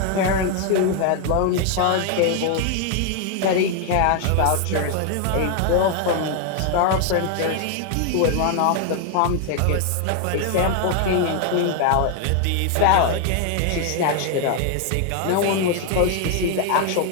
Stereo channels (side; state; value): both; different; correlation 0.00